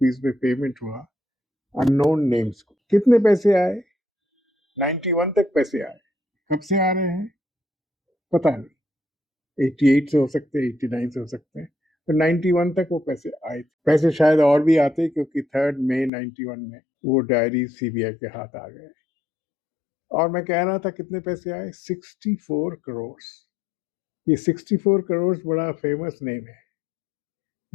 में पेमेंट हुआ अननोन नेम्स को। कितने पैसे आए? 91 तक पैसे आए। कब से आ रहे हैं पता नहीं, 88 से हो सकते हैं, 89 से हो सकते हैं, तो 91 तक वो पैसे आए थे। पैसे शायद और भी आते क्योंकि 3 मई 91 में वो डायरी सीबीआई के हाथ आ गए। और मैं कह रहा था कितने पैसे आए? 64 करोड़। ये 64 करोड़ बड़ा फेमस नेम है,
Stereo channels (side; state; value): right; drops out; at 16.1 s